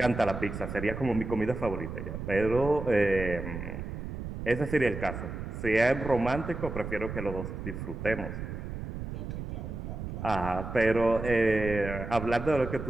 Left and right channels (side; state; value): right; noise; rumble, 7 dB below the sound